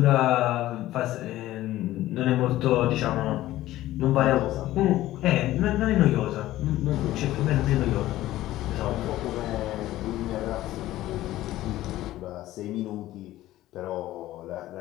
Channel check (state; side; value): quieter; right; 15.3 dB